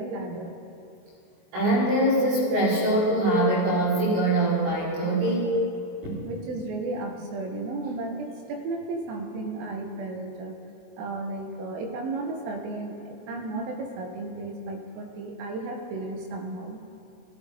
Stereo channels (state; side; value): late; left; 24 ms